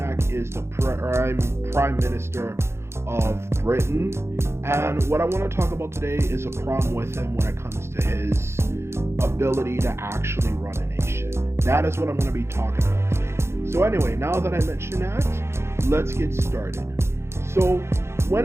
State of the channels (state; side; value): late; left; 0.13 ms